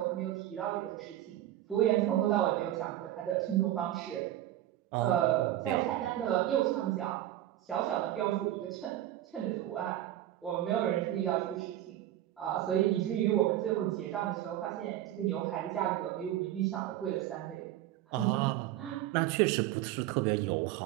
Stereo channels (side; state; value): left; quieter; 13.3 dB